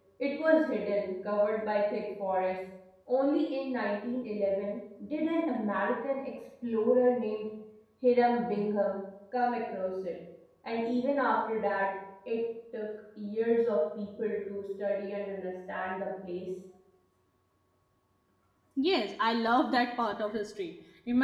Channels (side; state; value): both; identical; correlation 1.00